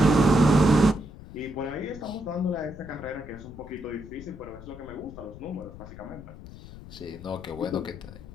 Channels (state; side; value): noise; left; rumble, 15 dB below the sound